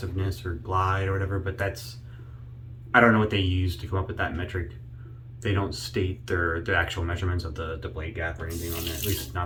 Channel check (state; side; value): identical; both; correlation 1.00